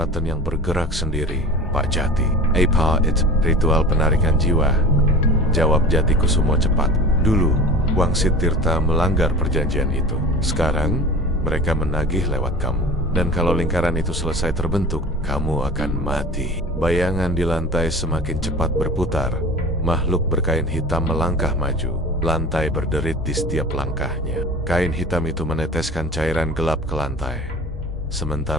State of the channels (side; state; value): both; normal; correlation 0.37